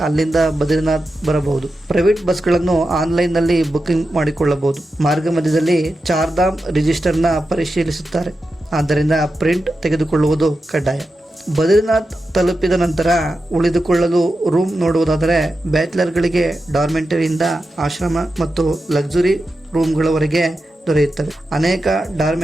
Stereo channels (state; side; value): normal; both; correlation 0.90